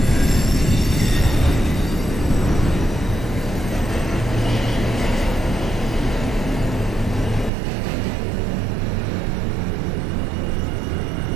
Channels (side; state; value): left; drops out; at 7.5 s